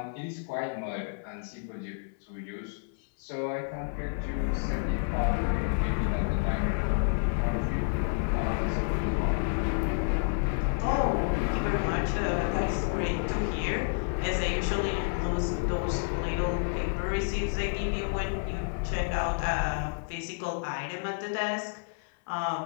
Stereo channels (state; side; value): silent; right; 58 dB below the other